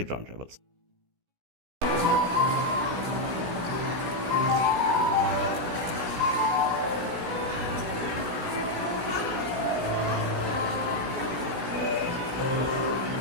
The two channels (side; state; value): left; late; 17 ms